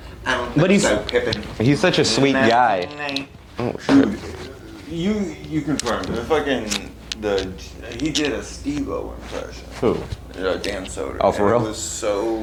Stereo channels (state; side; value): identical; both; correlation 1.00